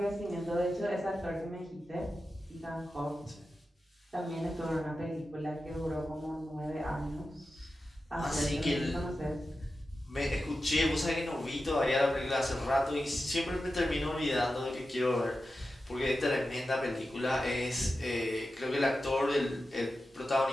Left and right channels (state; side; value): normal; both; correlation 0.92